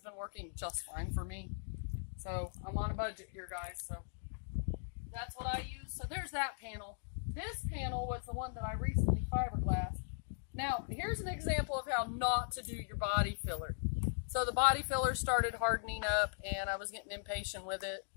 working just fine for me. So I'm on a budget here, guys. So that's what I use. So there's that panel. This panel was the one that I recently fiberglassed. Now, here's an example of how not to do your body filler. So the body filler started hardening up, and I was getting impatient with it.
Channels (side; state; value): right; silent; digital silence